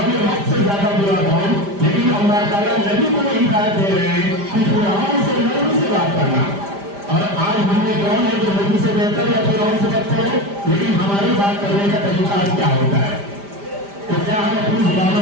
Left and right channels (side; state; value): left; late; 5.0 ms